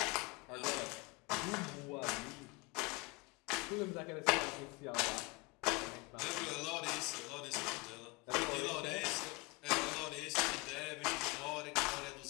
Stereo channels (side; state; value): right; quieter; 26.6 dB